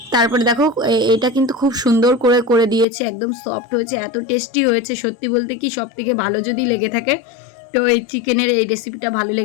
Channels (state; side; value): drops out; right; at 2.9 s